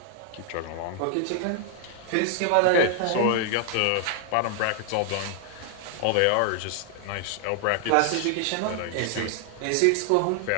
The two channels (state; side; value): different; both; correlation 0.00